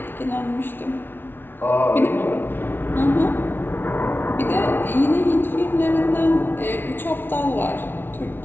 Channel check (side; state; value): right; late; 0.10 ms